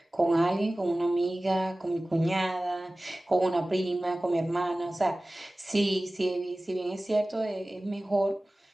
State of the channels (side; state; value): both; normal; correlation 0.98